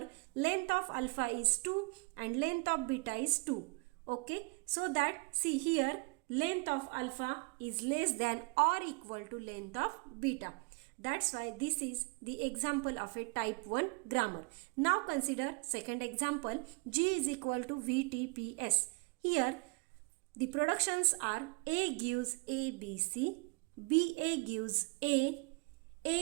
length of alpha is 2 and length of beta is 2. Okay, so that see here length of alpha is less than or equal to length of beta. That's why this is the example of a type 1 grammar. Now consider second example, G is equal to VTPS. Here the productions are A gives ABC, BA gives A,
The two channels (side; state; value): left; quieter; 30.5 dB